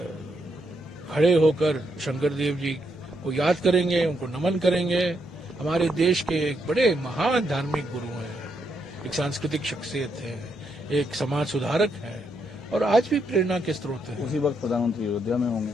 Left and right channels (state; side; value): normal; both; correlation 0.78